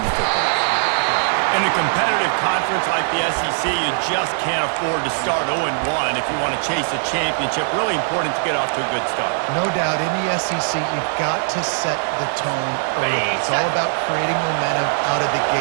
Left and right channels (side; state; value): left; silent; 64 dB below the other